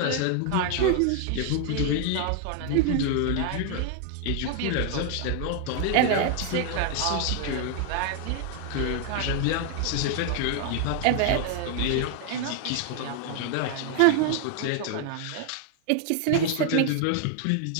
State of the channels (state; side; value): different; both; correlation 0.00